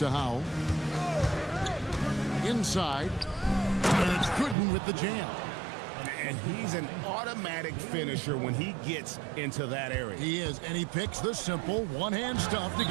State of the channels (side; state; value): left; drops out; at 4.5 s